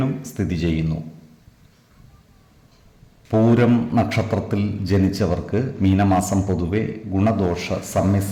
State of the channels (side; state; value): both; identical; correlation 1.00